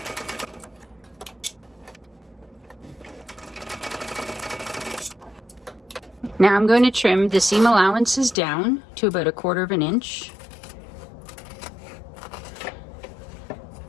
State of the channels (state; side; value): drops out; right; at 8.3 s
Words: Now I'm going to trim the seam allowances down to about 1/4 inch.